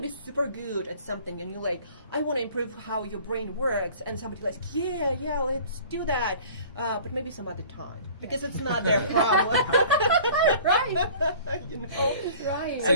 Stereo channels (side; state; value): both; inverted; correlation -0.47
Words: be super good at something and you're like, I want to improve how your brain works, and somebody's like, yeah, let's do that, but maybe some other time, because it's not their problem. Right. Right. So